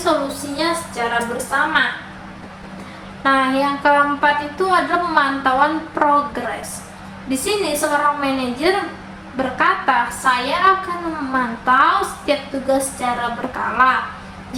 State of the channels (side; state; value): both; identical; correlation 1.00